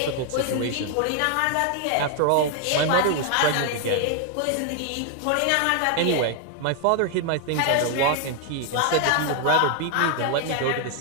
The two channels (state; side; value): different; both; correlation 0.00